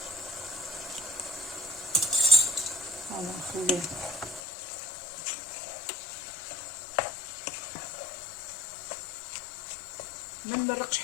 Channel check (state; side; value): drops out; right; at 4.4 s